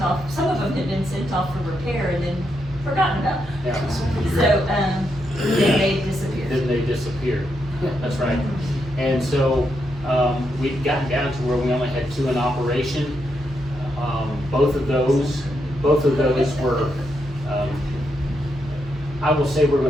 some of them had been sent off for repair and then forgotten about. Yeah. So, then they disappeared. Then they disappeared. That's right. And so, we'd gotten down to where we only had 2 in operation. Both of those were, I will say we're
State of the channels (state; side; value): normal; both; correlation 0.81